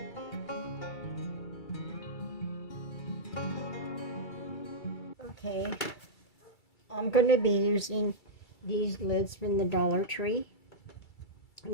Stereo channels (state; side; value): late; right; 2.3 ms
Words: Okay, I'm going to be using these lids from the Dollar Tree.